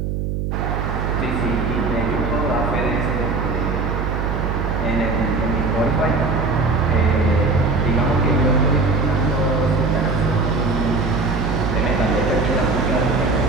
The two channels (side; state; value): right; noise; hum, 2 dB below the sound